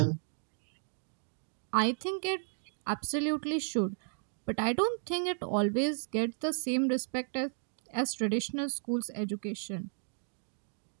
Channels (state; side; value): silent; left; digital silence